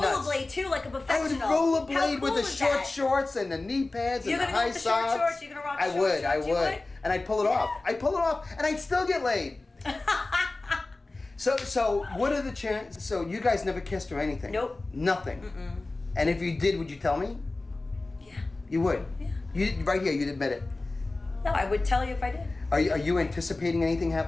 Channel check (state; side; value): quieter; right; 3.2 dB